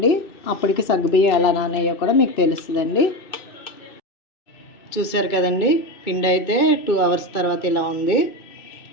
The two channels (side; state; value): right; late; 2.2 ms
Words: అప్పటికి సగ్గుబియ్యం ఎలా నానయ్యో కూడా మీకు తెలుస్తుందండి. చూసారు కదండి, పిండి అయితే 2 అవర్స్ తర్వాత ఇలా ఉంది.